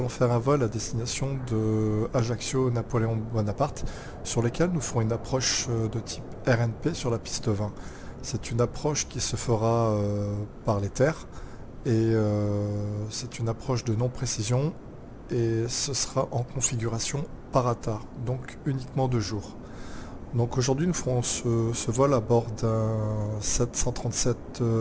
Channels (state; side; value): identical; both; correlation 1.00